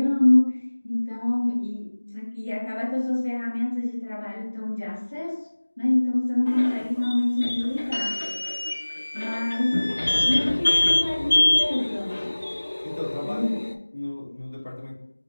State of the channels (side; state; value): both; inverted; correlation -1.00